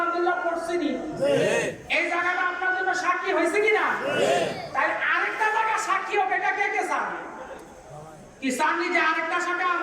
পড়ছিনি এই জায়গাটা আপনার জন্য সাক্ষী হয়েছে কিনা তাই আরেকটা জায়গা সাক্ষী হোক এটা কে কে চান কি চান যে আরেকটা জায়গা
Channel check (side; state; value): both; identical; correlation 1.00